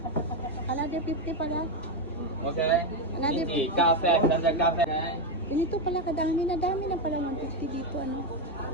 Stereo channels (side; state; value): both; normal; correlation 0.07